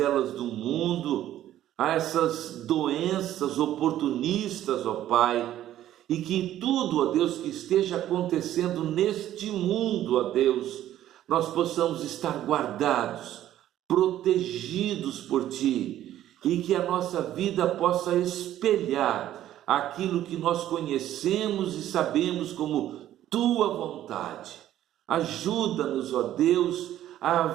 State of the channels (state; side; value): quieter; left; 12.6 dB